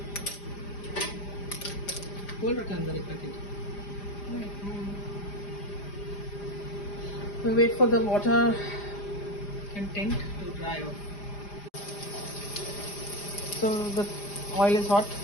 Hold it under it, packet. We wait for the water content to dry off. So the oil is hot.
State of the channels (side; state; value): right; late; 4.9 ms